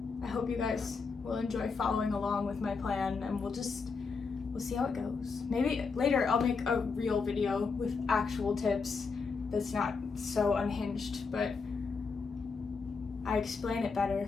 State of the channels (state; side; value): quieter; right; 4.9 dB